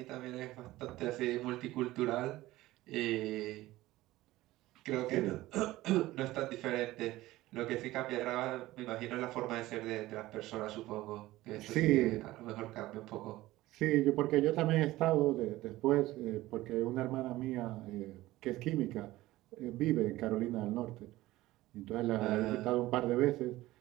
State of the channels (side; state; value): left; quieter; 17.2 dB